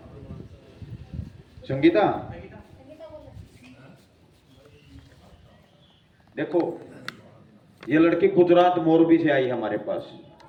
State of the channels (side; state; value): both; identical; correlation 1.00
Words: संगीता देखो, ये लड़की गुजरात मोरबी से आई हमारे पास।